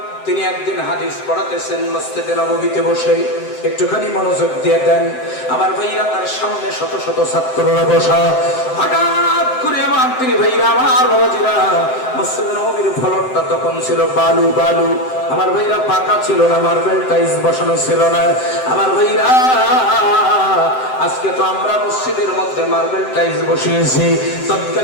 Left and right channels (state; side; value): late; right; 7.7 ms